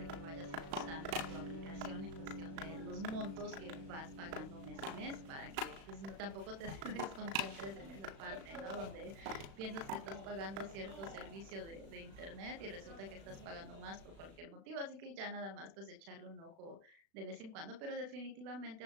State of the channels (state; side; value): late; left; 36 ms